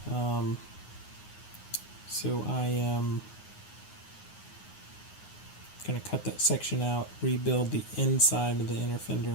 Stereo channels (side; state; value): right; late; 9.5 ms